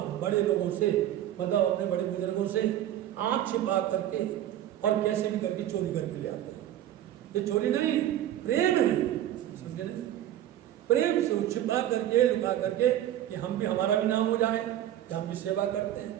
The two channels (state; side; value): quieter; left; 12.2 dB